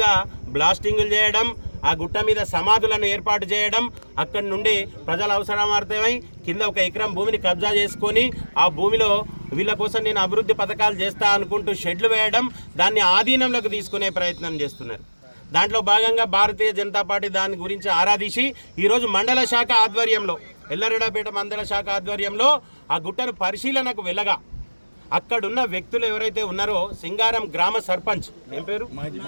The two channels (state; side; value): inverted; both; correlation -1.00